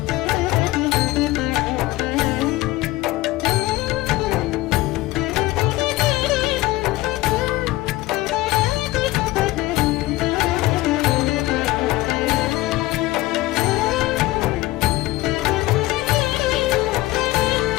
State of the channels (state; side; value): quieter; right; 18.4 dB